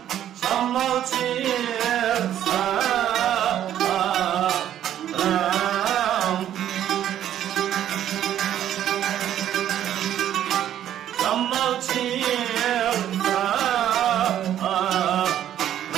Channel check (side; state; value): left; quieter; 11.1 dB